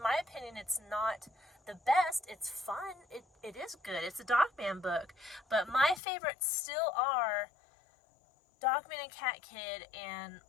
my opinion, it's not the best. It's fun. It is good. It's a Dogman book. But my favorites still are Dogman and Cat Kid and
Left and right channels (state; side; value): drops out; right; at 6.0 s